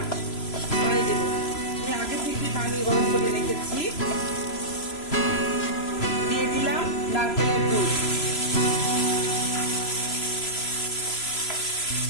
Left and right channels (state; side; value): late; right; 3.0 ms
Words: পানি দেব। আমি আগে থেকে পানি গরম করে রেখেছি। দিয়ে দিলাম নারকেলের দুধ।